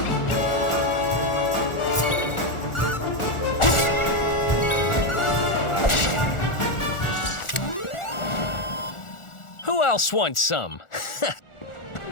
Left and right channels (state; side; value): late; right; 1.4 ms